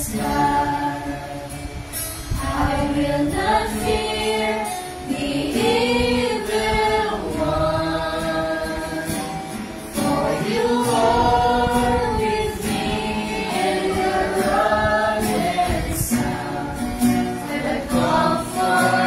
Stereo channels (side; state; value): both; identical; correlation 1.00